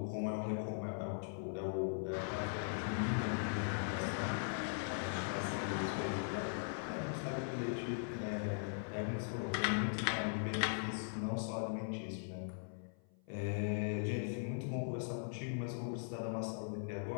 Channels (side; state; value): right; silent; 51 dB below the other